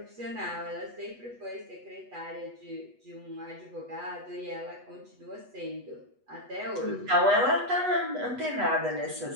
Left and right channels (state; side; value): late; left; 8.2 ms